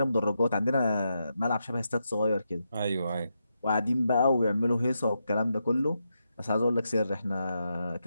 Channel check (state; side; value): inverted; both; correlation -0.84